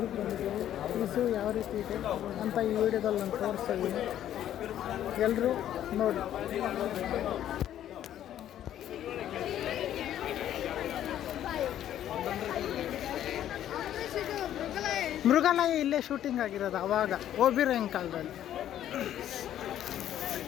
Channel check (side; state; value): right; quieter; 11.4 dB